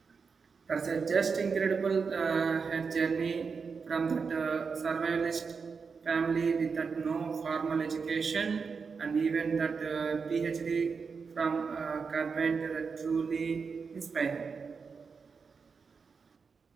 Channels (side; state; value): left; quieter; 5.3 dB